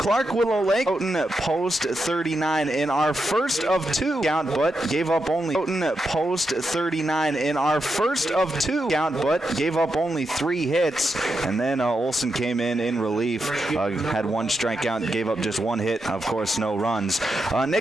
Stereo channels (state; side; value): normal; both; correlation 0.85